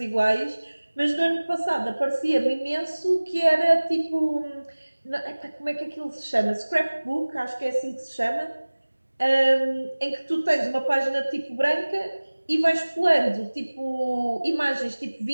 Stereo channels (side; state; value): both; inverted; correlation -1.00